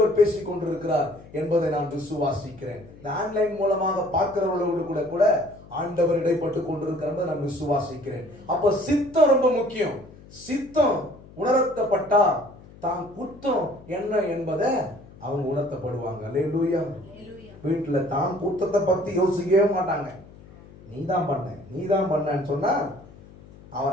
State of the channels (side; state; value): left; noise; hum, 21 dB below the sound